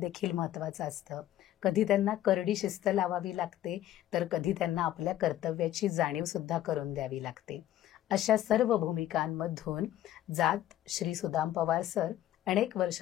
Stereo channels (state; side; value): quieter; right; 12.9 dB